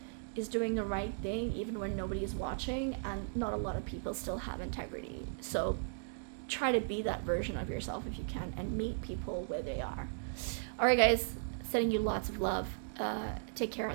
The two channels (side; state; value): left; silent; digital silence